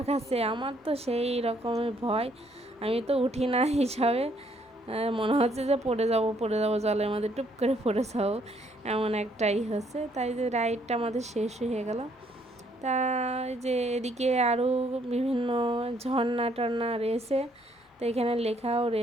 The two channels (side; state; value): both; normal; correlation 0.68